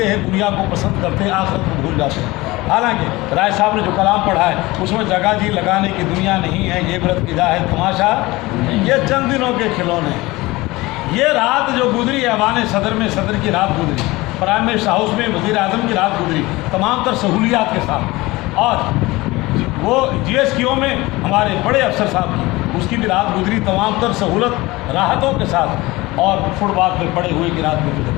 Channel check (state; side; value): quieter; right; 20.8 dB